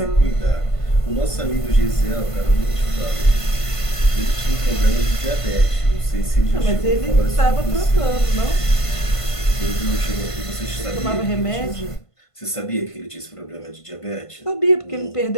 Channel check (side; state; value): right; late; 1.5 ms